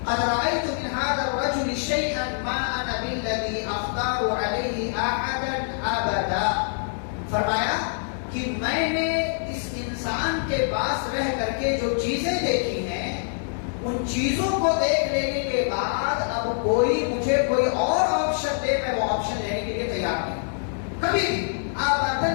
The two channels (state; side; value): silent; right; digital silence